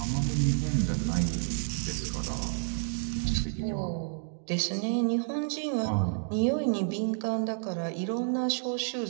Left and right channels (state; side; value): silent; left; digital silence